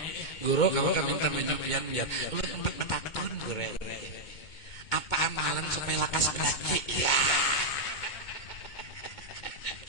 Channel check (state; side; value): late; right; 2.2 ms